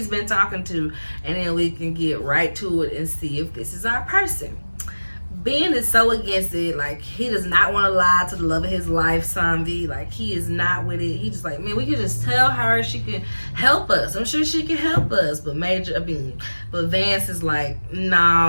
been talking to, and then we can get right to it and see if this is our person. Ben is so against it. Like, he does not want to lie to the love of his life, Zombie. Like, he is not with it. He just like, man, we can just tell her she can help us. I'm sure she can help us. But Vance is like,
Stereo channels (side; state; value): both; inverted; correlation -1.00